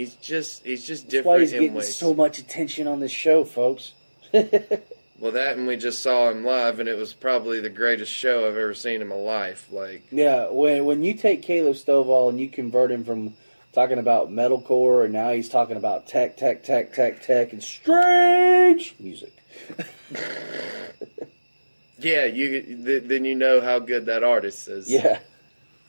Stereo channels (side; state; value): both; inverted; correlation -1.00